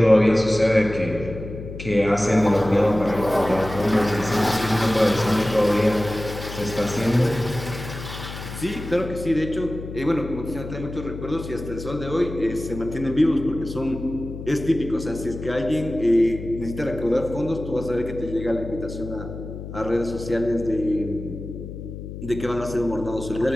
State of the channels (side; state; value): left; noise; hum, 10 dB below the sound